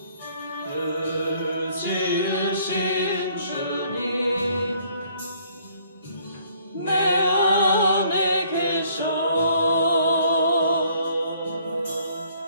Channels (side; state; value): both; inverted; correlation -0.62